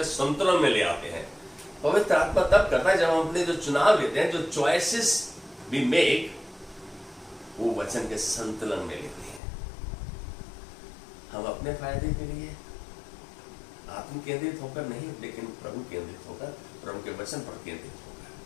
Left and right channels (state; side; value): drops out; right; at 9.4 s